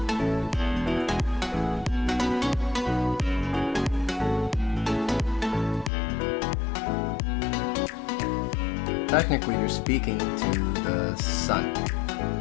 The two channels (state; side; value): drops out; right; at 5.9 s